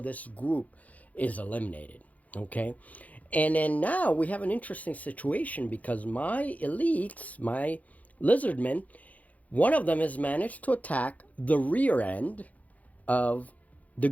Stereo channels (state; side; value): late; right; 0.073 ms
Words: group is eliminated. Okay? And then now we have an interesting situation, because my elites, my lizardmen, one of them has managed to attack the rear end of the